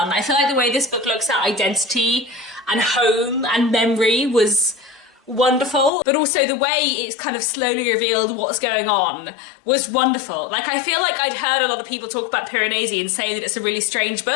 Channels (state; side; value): drops out; right; at 5.9 s